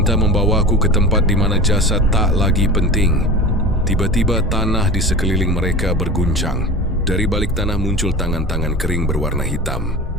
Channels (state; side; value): normal; both; correlation 0.32